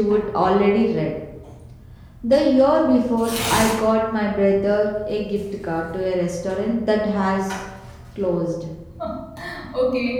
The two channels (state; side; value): identical; both; correlation 1.00